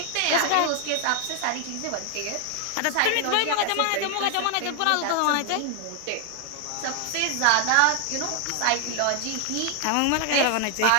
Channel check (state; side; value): different; both; correlation 0.00